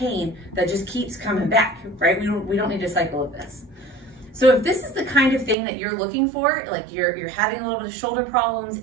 that just keeps coming back, right? We don't need a cycle of this. So if this is the kind of thing that you're looking for, like you're having a little bit of shoulder problems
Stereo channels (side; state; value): left; drops out; at 5.6 s